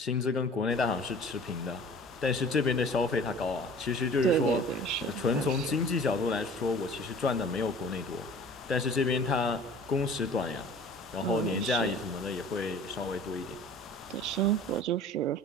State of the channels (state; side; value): normal; both; correlation 0.46